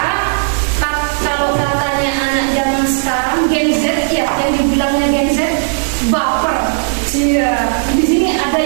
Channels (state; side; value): silent; left; digital silence